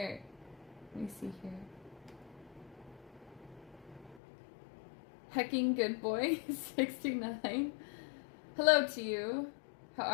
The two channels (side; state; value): right; drops out; at 4.2 s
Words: Let me see here. Hecking good boy, 69. Hello to you. How